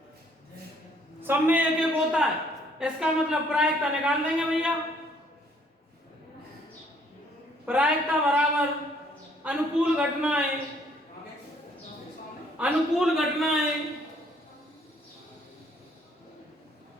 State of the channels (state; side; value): normal; both; correlation 0.64